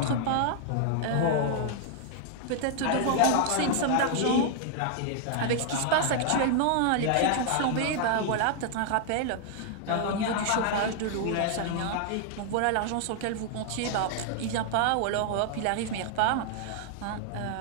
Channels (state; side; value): different; both; correlation 0.00